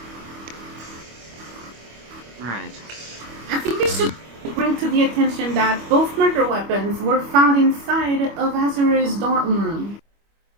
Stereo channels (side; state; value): left; late; 25 ms